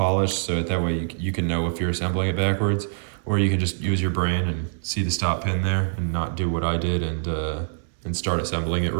so that way you can know if you're assembling it backwards, or you can just use your brain and see the stop pin there and not do what I did and start assembling it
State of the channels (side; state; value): left; silent; 62 dB below the other